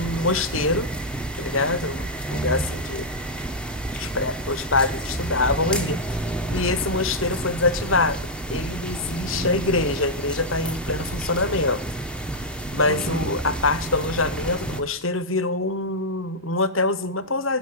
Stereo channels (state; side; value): normal; both; correlation -0.06